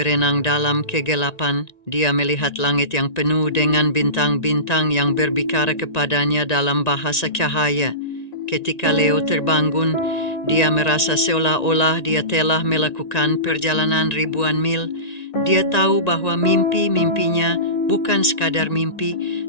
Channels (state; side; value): late; right; 1.9 ms